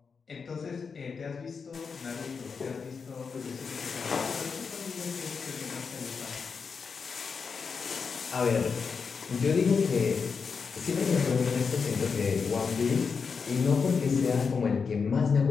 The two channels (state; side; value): quieter; right; 5.5 dB